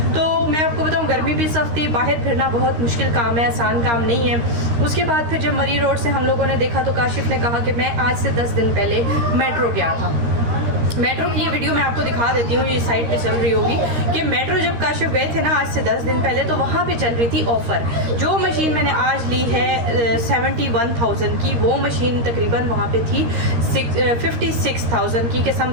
तो मैं आपको बताऊँ गर्मी भी सख्त थी, बाहर फिरना बहुत मुश्किल काम है, आसान काम नहीं है। उसके बाद फिर जब मरी रोड से हम लोगों ने देखा तो काशिफ ने कहा कि मैं आज से 10 दिन पहले मेट्रो गया था। मेट्रो की ये वीडियो मैं आपको दिखा देती हूँ, ये साइट पे चल रही होगी कि मेट्रो जब काशिफ गए थे ना आज से 10 दिन पहले, तो वहाँ पे चल रही थी ऑफ़र। जो मशीन मैंने आज ली है 71,000 की, वो मशीन तकरीबन वहाँ पे थी 56,000 की के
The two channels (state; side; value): late; left; 13 ms